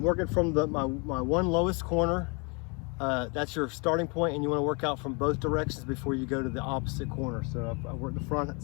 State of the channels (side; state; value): right; quieter; 32.3 dB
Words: working from my one lowest corner. That's your starting point, and you want to work out from both directions before you go to the opposite corner. So I work the front